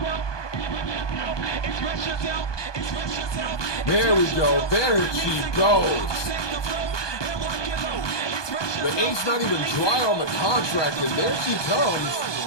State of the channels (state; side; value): late; right; 1.2 ms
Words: There we go. There she goes. The ink's not even dry on the contract, and there she